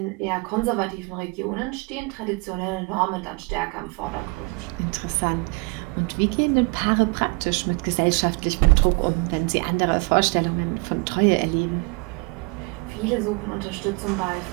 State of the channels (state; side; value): quieter; left; 29.5 dB